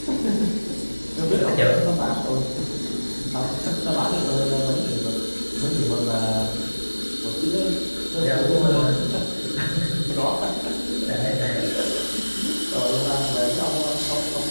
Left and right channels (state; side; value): inverted; both; correlation -1.00